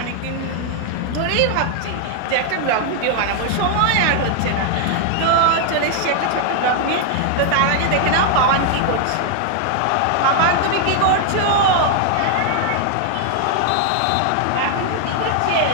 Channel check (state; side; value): different; both; correlation 0.00